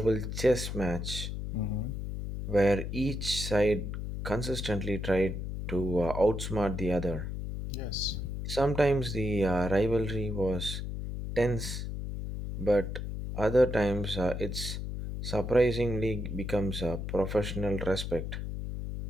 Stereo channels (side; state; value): left; noise; hum, 5 dB below the sound